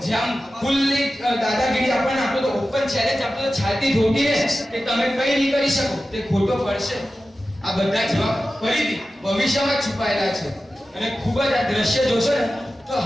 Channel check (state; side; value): normal; both; correlation 0.94